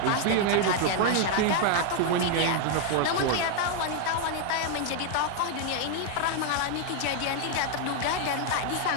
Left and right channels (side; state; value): both; different; correlation 0.00